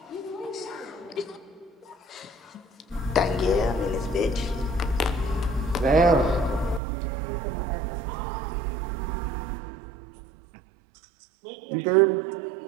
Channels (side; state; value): left; drops out; at 6.8 s